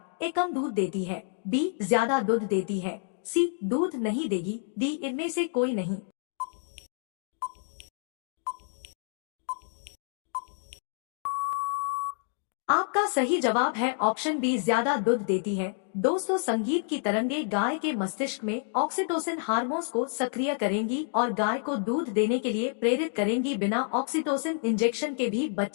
ए, कम दूध देती है। बी, ज्यादा दूध देती है। सी, दूध नहीं देगी। डी, इनमें से कोई नहीं। आपका सही जवाब है ऑप्शन बी, ज्यादा दूध देती है। दोस्तों संगीत की तरंगें गाय के मस्तिष्क में ऑक्सीटोसिन हार्मोन्स को सक्रिय करेंगी और गाय को दूध देने के लिए प्रेरित करेंगी। बिना ऑक्सीटोसिन इंजेक्शन के भी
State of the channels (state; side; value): silent; right; digital silence